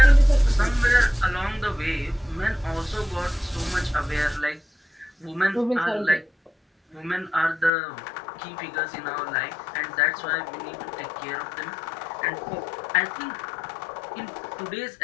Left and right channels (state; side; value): drops out; right; at 7.7 s